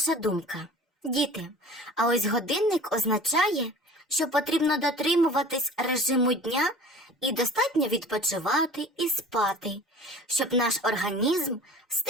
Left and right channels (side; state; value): both; normal; correlation 0.42